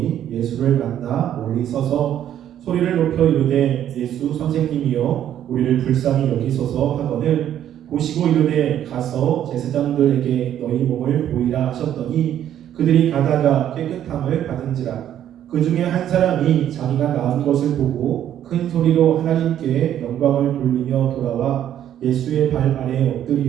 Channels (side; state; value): left; quieter; 10.8 dB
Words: 예수를 만나 멀리 서서 소리를 높여 이르되 예수 선생님이여 우리를 불쌍히 여기소서 하거늘 보시고 이르되 가서 제사장들에게 너희 몸을 보이라 하셨더니 그들이 가다가 깨끗함을 받은지라. 그 중에 한 사람이 자기가 나은 것을 보고 큰 소리로 하나님께 영광을 돌리며 돌아와 예수의 발 아래에